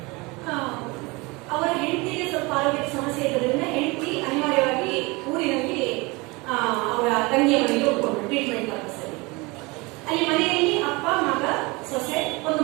ಅವರ ಹೆಂಡತಿಗೆ ಸ್ವಲ್ಪ ಆರೋಗ್ಯದ ಸಮಸ್ಯೆ ಇರೋದ್ರಿಂದ ಹೆಂಡತಿ ಅನಿವಾರ್ಯವಾಗಿ ಊರಿನಲ್ಲಿ ಅವರ ತಂಗಿಯ ಮನೆಗೆ ಹೋಗ್ಕೊಂಡು ಟ್ರೀಟ್ಮೆಂಟ್ ಪರ್ಪಸ್ ಅಲ್ಲಿ. ಅಲ್ಲಿ ಮನೆಯಲ್ಲಿ ಅಪ್ಪ, ಮಗ, ಸೊಸೆ, ಒಂದು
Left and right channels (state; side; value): quieter; left; 25.2 dB